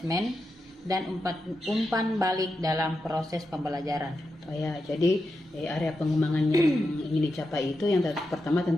dan umpan balik dalam proses pembelajaran. Oh ya, jadi area pengembangan yang ingin dicapai itu yang pertama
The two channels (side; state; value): both; normal; correlation 0.87